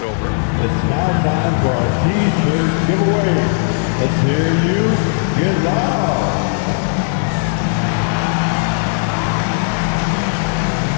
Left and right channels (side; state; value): right; silent; 68 dB below the other